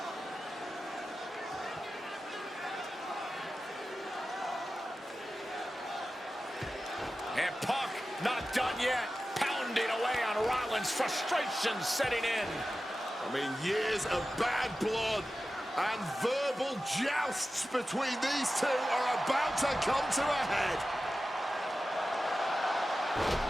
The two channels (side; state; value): both; normal; correlation 0.94